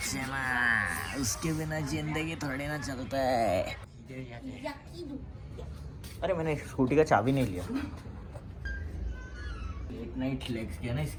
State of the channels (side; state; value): both; identical; correlation 1.00